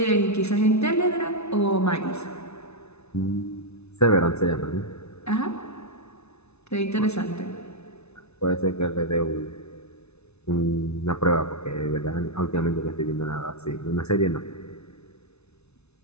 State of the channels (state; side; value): late; right; 0.81 ms